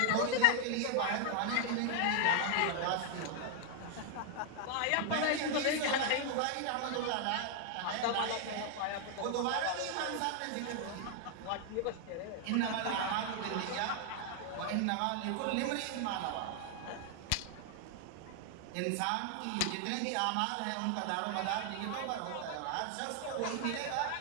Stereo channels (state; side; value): different; both; correlation 0.00